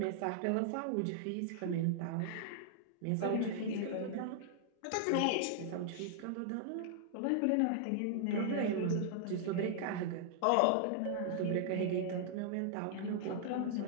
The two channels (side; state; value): both; different; correlation -0.01